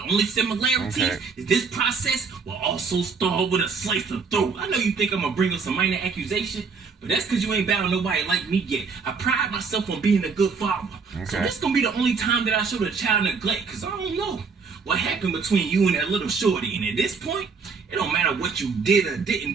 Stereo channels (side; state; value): left; quieter; 5.1 dB